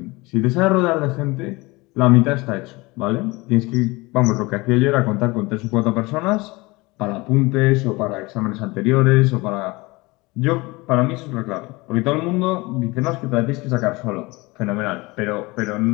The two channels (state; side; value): quieter; right; 23.4 dB